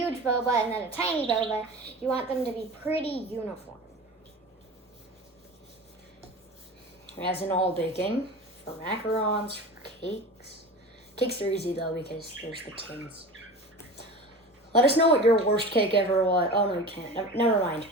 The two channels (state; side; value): normal; both; correlation 0.34